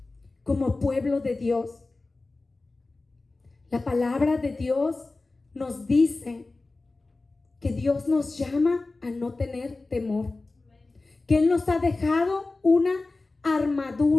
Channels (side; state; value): right; quieter; 3.4 dB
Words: como pueblo de Dios? La palabra de Dios nos dice que Dios nos llama a no tener temor, que Él nos ha dejado una